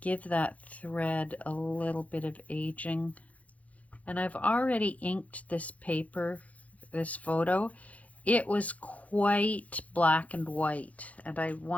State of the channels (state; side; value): late; right; 0.068 ms